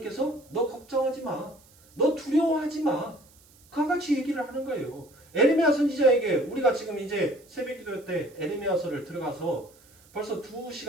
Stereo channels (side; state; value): right; noise; hiss, 28 dB below the sound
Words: 너 걱정하지 마. 너 두려워하지 마. 그와 같이 얘기를 하는 거예요. 에레미야 선지자에게 우리가 지금 이제 새벽기도 때 에레미야서를 들어가서 벌써